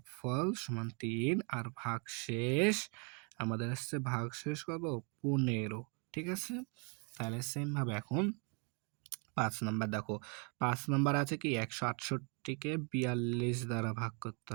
সমান ৩ আর ভাগশেষ আমাদের আসছে ভাগশেষ কত? ১৫, ঠিক আছে? তাহলে সেম ভাবে এখন ৫ নাম্বার দেখো। ৫ নাম্বার আছে কি ১৬৮কে ৪২ দ্বারা ভাগ করতে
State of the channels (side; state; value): left; quieter; 36.1 dB